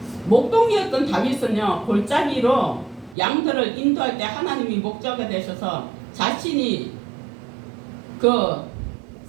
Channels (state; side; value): drops out; left; at 3.2 s